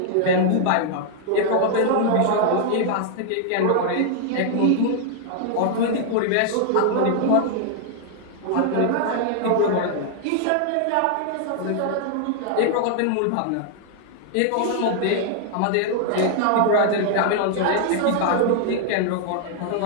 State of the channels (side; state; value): both; different; correlation 0.00